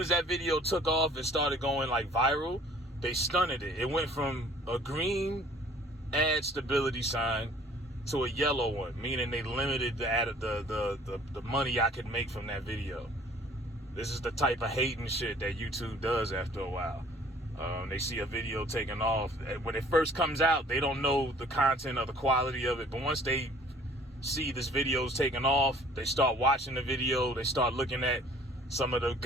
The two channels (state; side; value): normal; both; correlation 0.54